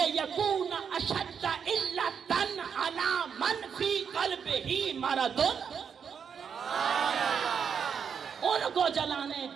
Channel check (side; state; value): left; quieter; 7.0 dB